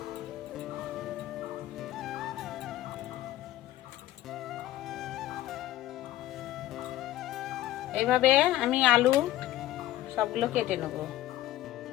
এইভাবে আমি আলু সবগুলো কেটে নেব।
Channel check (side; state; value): right; quieter; 14.3 dB